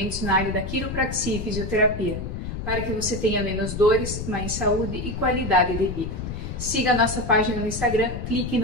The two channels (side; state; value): left; noise; rumble, 6 dB below the sound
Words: na área da quiropraxia e fisioterapia, para que você tenha menos dores, mais saúde e qualidade de vida. Siga a nossa página no Instagram, clique